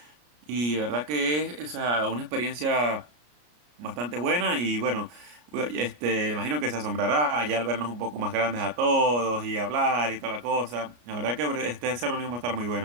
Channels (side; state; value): left; late; 33 ms